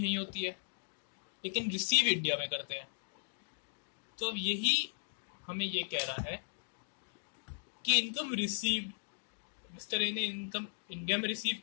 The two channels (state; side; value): silent; right; digital silence